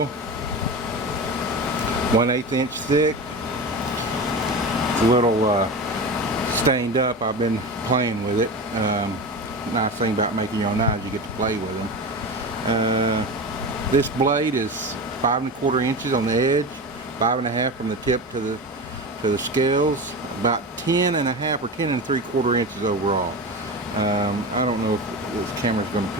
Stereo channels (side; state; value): both; normal; correlation 0.26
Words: 1/8 inch thick. It's a little stained up. I've been playing with it. Nice thing about making your own knives, you get to play with them. This blade is 5 1/4 inches on the edge, 5 1/2 from the tip to the scales, about 10 1/2 or 10 3/4 inches overall. I don't know if this camera's going to